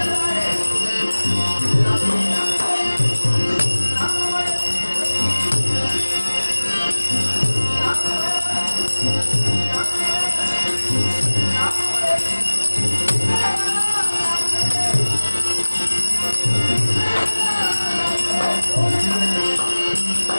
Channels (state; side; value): inverted; both; correlation -1.00